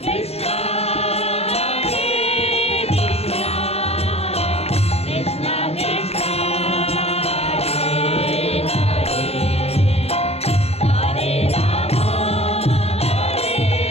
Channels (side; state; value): right; late; 0.30 ms